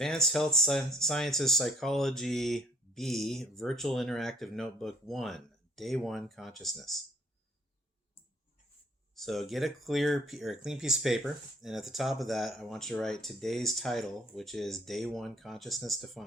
Health Sciences Psychology B, Virtual Interactive Notebook 1, Day 1 Consciousness. So get a clean piece of paper, and at the top of that, I want you to write today's title, which is Day 1 Consciousness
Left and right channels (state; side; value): normal; both; correlation 0.60